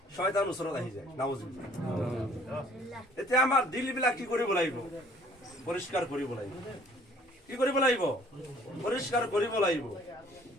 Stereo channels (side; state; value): both; normal; correlation 0.57